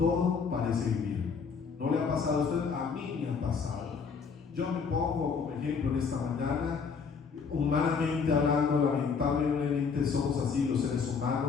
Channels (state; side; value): quieter; right; 5.6 dB